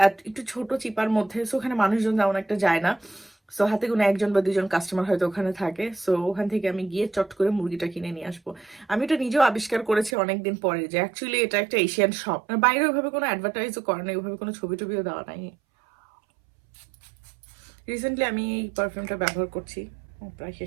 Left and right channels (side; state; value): left; drops out; at 10.2 s